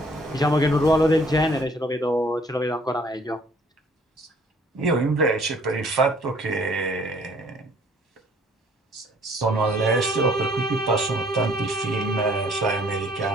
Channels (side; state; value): both; normal; correlation 0.58